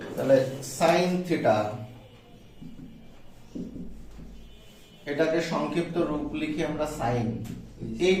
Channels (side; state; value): both; identical; correlation 1.00